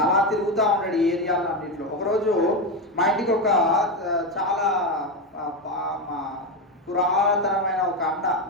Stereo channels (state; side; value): normal; both; correlation 0.12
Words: అలా తిరుగుతూ ఉంటాడు ఈ ఏరియాలో అన్నింటిలో. ఒకరోజు మా ఇంటికి ఒక చాలా పురాతనమైన ఒక అన్న,